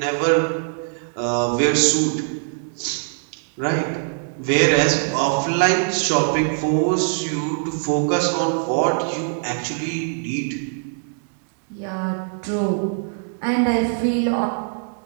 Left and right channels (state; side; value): silent; left; digital silence